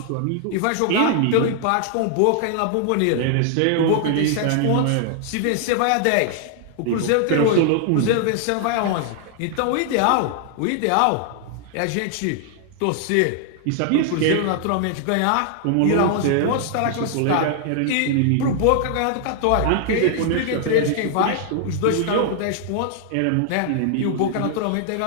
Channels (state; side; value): different; both; correlation 0.00